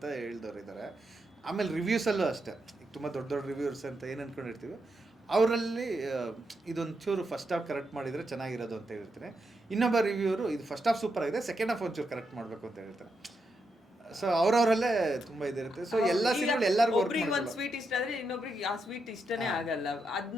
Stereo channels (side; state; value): both; normal; correlation 0.83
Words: ಹೇಳಿದವ್ರು ಇದ್ದಾರೆ. ಆಮೇಲೆ ರಿವ್ಯೂಸಲ್ಲೂ ಅಷ್ಟೇ, ಈಗ ತುಂಬ ದೊಡ್ಡ ದೊಡ್ಡ ರಿವ್ಯೂರ್ಸ್ ಅಂತ ಏನು ಅಂದ್ಕೊಂಡಿರ್ತೀವಿ, ಅವರಲ್ಲಿ ಇದೊಂದು ಚೂರು ಫಸ್ಟ್ ಹಾಫ್ ಕರೆಕ್ಟ್ ಮಾಡಿದರೆ ಚೆನ್ನಾಗಿರೋದು ಅಂತ ಹೇಳ್ತೀನಿ. ಇನ್ನೊಬ್ಬ ರಿವ್ಯೂರು ಇದು ಫಸ್ಟ್ ಹಾಫ್ ಸೂಪರ್ ಆಗಿದೆ, ಸೆಕೆಂಡ್ ಹಾಫ್ ಒಂಚೂರು ಕರೆಕ್ಟ್ ಮಾಡಬೇಕು ಅಂತ ಹೇಳ್ತಾರೆ. ಸೊ ಅವ್ರವರಲ್ಲೇ ತುಂಬಾ ಇದಿರುತ್ತೆ. ಸೊ ಎಲ್ಲ ಸಿನಿಮಾ ಎಲ್ಲರಿಗೂ ಒಂದು ಸ್ವೀಟ್ ಇಷ್ಟ ಆದ್ರೆ ಇನ್ನೊಬ್ರಿಗೆ ಆ ಸ್ವೀಟ್ ಇಷ್ಟನೇ ಆಗಲ್ಲ, ಅದ್